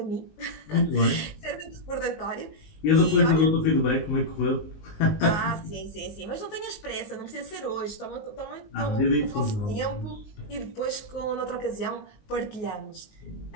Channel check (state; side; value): late; right; 19 ms